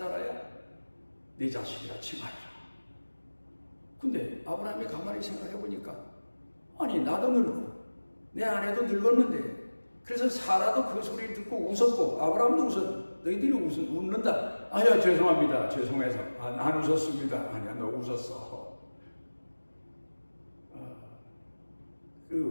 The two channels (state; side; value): inverted; both; correlation -1.00